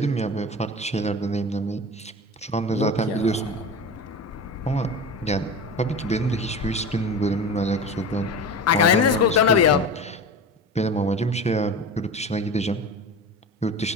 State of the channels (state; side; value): normal; both; correlation 0.30